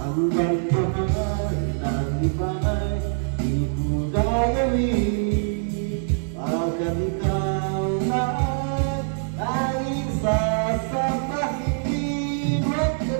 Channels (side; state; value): left; silent; 59 dB below the other